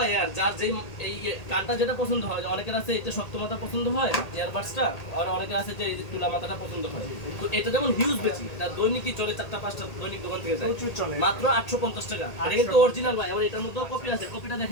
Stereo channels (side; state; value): right; late; 1.8 ms